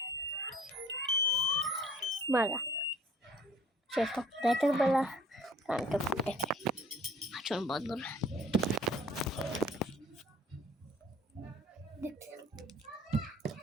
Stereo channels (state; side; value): normal; both; correlation 0.53